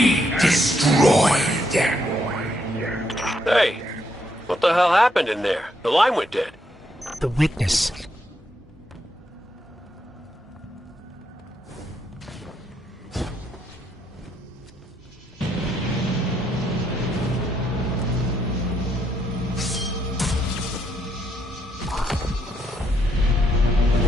destroyed. Hey, what the hell happened in there? The line went dead. The witness.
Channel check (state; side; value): normal; both; correlation 0.76